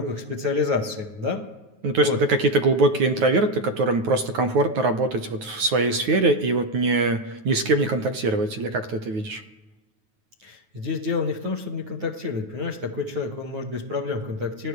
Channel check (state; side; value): late; left; 9.3 ms